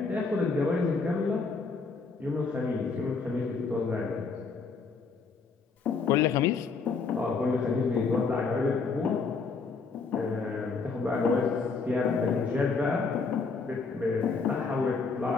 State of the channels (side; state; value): right; quieter; 4.7 dB